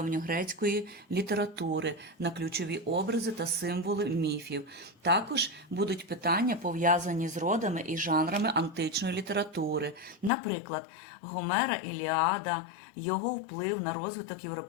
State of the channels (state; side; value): drops out; right; at 10.3 s